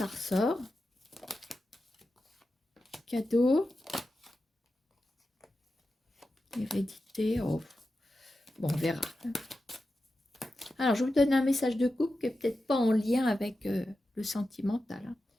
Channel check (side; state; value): both; normal; correlation 0.91